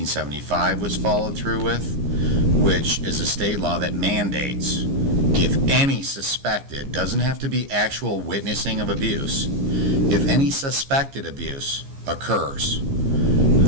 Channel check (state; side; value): late; left; 15 ms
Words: was followed through with, which is a state law that mandates if any suspected, doesn't have to be actual witnessing of abuse, if any suspected abuse occurs,